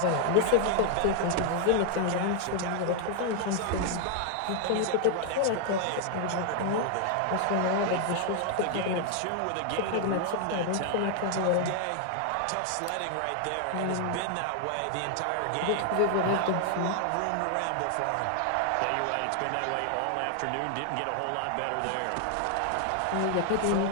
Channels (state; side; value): different; both; correlation 0.00